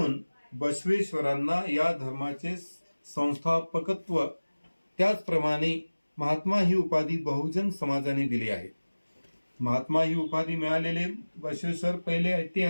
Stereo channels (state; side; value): inverted; both; correlation -1.00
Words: बसवेश्वरांना या धर्माचे संस्थापकत्व, त्याचप्रमाणे महात्मा ही उपाधी बहुजन समाजाने दिली आहे। महात्मा ही उपाधी मिळालेले बसवेश्वर पहिले